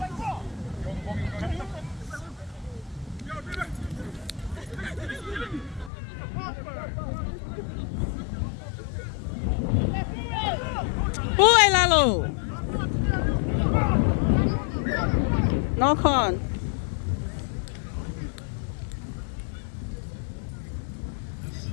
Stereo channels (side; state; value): right; drops out; at 5.9 s